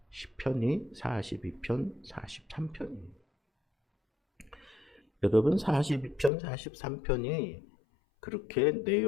시편이 42편, 43편이에요. 여러분, 42편, 43편이 그렇게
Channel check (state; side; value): drops out; right; at 6.3 s